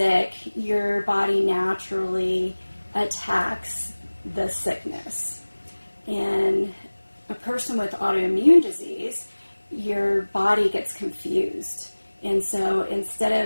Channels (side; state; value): both; inverted; correlation -1.00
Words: your body naturally attacks the sickness. And a person with autoimmune disease, your body gets confused. And so instead